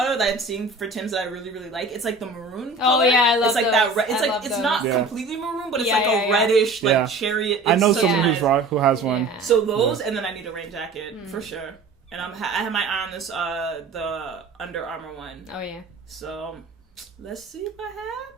that I'm seeing for Tim's that I really really like. It's like the maroon color. Oh yeah, I love it's like those. that. It's like it's not completely maroon, but it's like a reddish like chariot. I know someone who has one. Yeah. So those, and then I need a rain jacket for sure. And I have my eye on this the Under Armour one. Oh yeah. So let's see what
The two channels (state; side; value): quieter; left; 3.4 dB